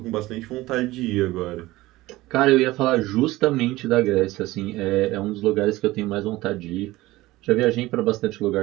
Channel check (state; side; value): quieter; left; 18.4 dB